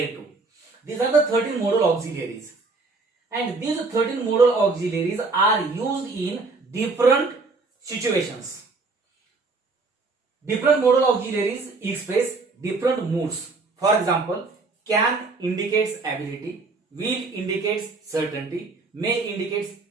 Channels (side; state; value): left; quieter; 3.9 dB